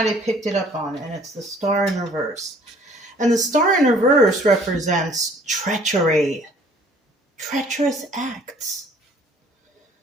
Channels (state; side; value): normal; both; correlation 0.56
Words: I picked it up on, and it's the star in reverse. And the star in reverse represents treachery. Treacherous acts.